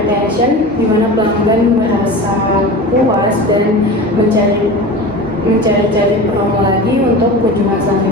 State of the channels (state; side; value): normal; both; correlation 0.32